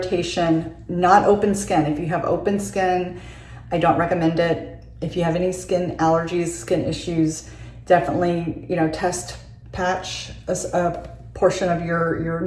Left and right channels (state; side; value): identical; both; correlation 1.00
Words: not open skin. If you have open skin, I don't recommend it. If you have any skin allergies, skin issues, definitely, you know, test patch a portion of your